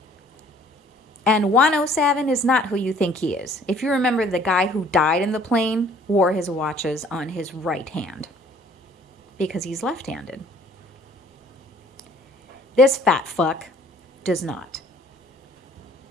And Wano Savin is not who you think he is. If you remember, the guy who died in the plane wore his watches on his right hand because he's left-handed. This fat fuck does not.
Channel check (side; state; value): both; normal; correlation 0.56